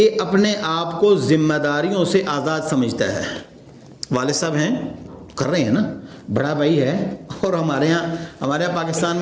اپنے آپ کو ذمہ داریوں سے آزاد سمجھتا ہے۔ والد صاحب ہیں، کر رہے ہیں نا، بڑا بھائی ہے، اور ہمارے یہاں پاکستان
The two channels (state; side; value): identical; both; correlation 1.00